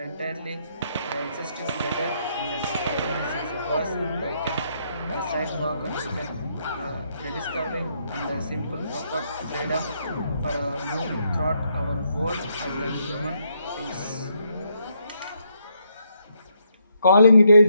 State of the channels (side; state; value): both; inverted; correlation -0.75